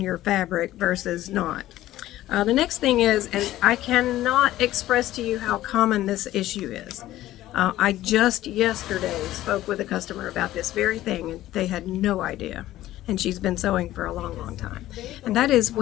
fabric versus not. The next thing is, and I cannot express to you how common this issue is. I just yesterday spoke with a customer about this very thing, and they had no idea. And she's been sewing for a long, long time. And that is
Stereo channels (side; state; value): right; quieter; 14.7 dB